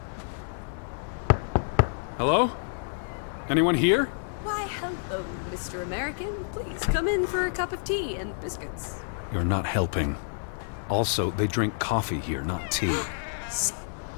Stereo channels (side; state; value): right; silent; 57 dB below the other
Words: Hello? Anyone here? Why, hello, Mr. American. Please come in for a cup of tea and biscuits. You're not helping. Also, they drink coffee here, not tea.